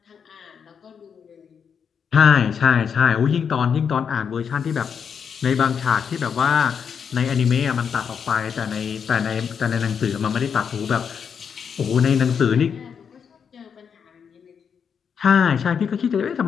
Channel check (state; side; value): quieter; right; 7.0 dB